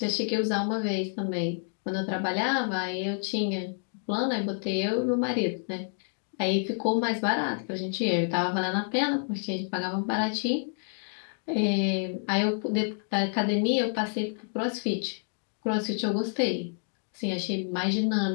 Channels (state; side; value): silent; right; 59 dB below the other